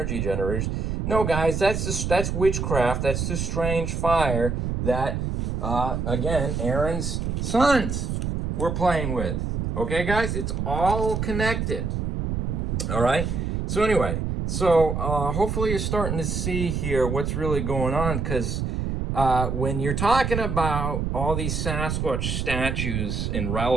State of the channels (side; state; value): right; noise; rumble, 2 dB below the sound